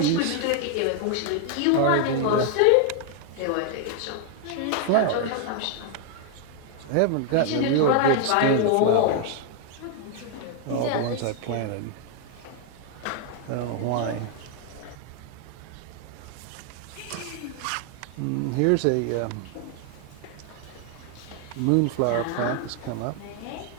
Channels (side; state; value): both; different; correlation 0.00